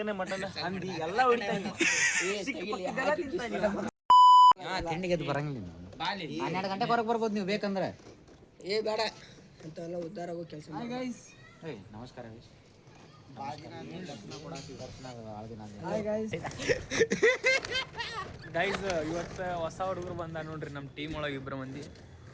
ಮಟನ್ ಅಂಗಡಿ ಎಲ್ಲ ಹೊಡಿತಾನೆ. ತಿಂಡಿಗೆ ಅದು ಬರಂಗಿಲ್ಲ. 12 ಗಂಟೆ ಹೊರಗೆ ಬರ್ಬೋದು ನೀವು ಬೇಕಂದ್ರೆ. ಬೇಡ ಅಂತೆಲ್ಲ ಉದ್ದಾರ ಆಗೋ ಕೆಲಸ. ನಮಸ್ಕಾರ ಗೈಸ್, ಇವತ್ತು ಹೊಸ ಹುಡುಗರು ಬಂದ ನೋಡ್ರಿ ನಮ್ಮ ಟೀಮ್ ಒಳಗೆ 2 ಮಂದಿ.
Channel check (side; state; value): both; identical; correlation 1.00